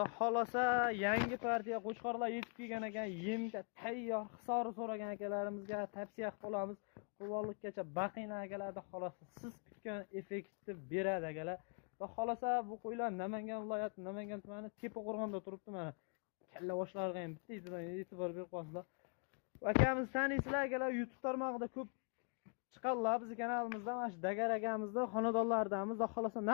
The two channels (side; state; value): right; quieter; 39.1 dB